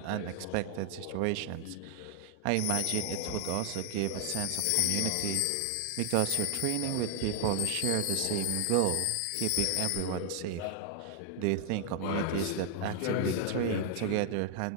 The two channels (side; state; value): both; different; correlation 0.00